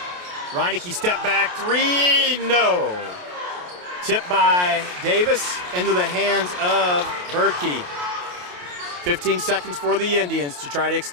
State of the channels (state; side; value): late; left; 28 ms